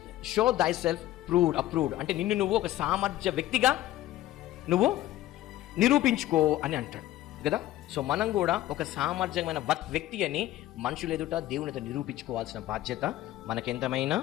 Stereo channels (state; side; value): quieter; right; 14.8 dB